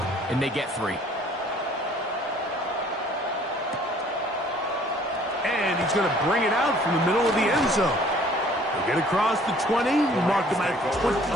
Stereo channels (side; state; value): both; normal; correlation 0.56